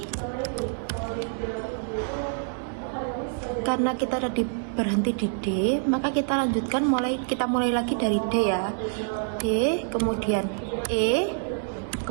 Karena kita tadi berhenti di D, maka kita lanjutkan kita mulai lagi dari D ya. D, kemudian E,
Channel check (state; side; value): silent; left; digital silence